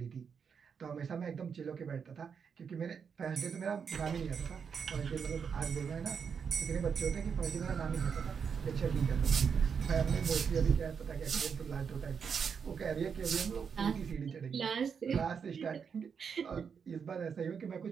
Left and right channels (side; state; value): left; quieter; 6.5 dB